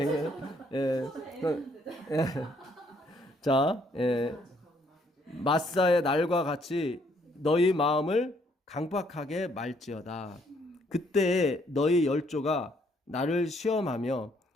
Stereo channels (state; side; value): normal; both; correlation 0.68